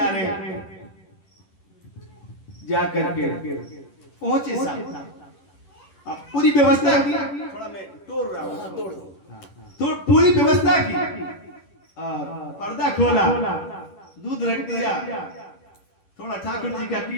रहे हैं। जा करके पहुंचे साहब, अब पूरी व्यवस्था की, थोड़ा मैं तोड़ रहा हूं, तोड़ दो, तो पूरी व्यवस्था की और पर्दा खोला, दूध रख दिया, थोड़ा ठाकुर जी का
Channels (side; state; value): right; late; 11 ms